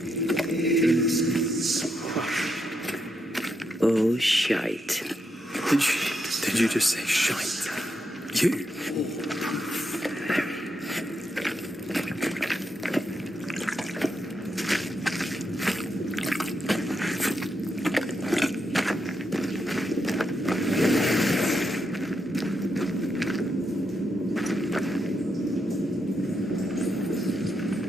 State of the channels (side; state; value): both; normal; correlation 0.82